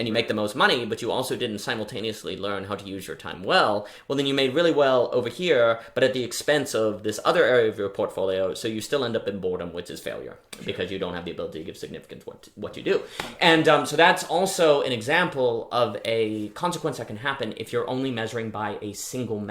you make the most money, but you also didn't simultaneously learn how to use your time well then you made really well over here, but at the expense of this other area of your portfolio, so you still end up in boredom, which is failure, because you don't have the ability to give significance to what you do. And so that's also an example of a consequence that can happen if you're only measuring by a single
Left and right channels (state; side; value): identical; both; correlation 1.00